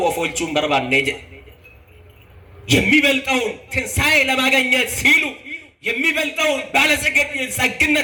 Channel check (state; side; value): identical; both; correlation 1.00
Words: ኦፎልቹን በርባኔ የሚበልጠውን ትንሳኤ ለማግኘት ሲሉ የሚበልጠውን